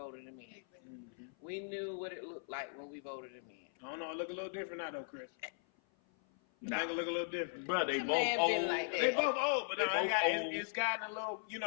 him in. Mm-hmm. We knew what it looked like when we voted him in. I don't know. It look a little different now, though, Chris. Nah. I think it look a little different. Bro, they both old. Like they both old, but it's gotten a little, you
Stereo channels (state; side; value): silent; right; 52 dB below the other